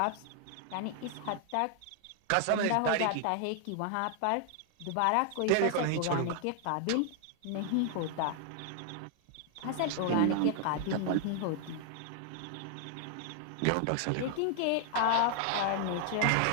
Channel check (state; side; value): different; both; correlation 0.00